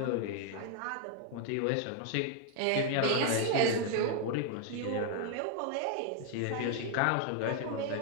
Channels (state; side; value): different; both; correlation 0.00